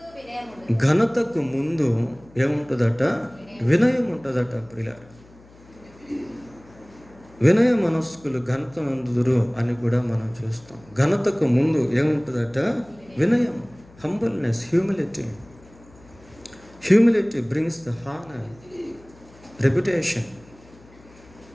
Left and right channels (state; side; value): noise; left; hum, 25 dB below the sound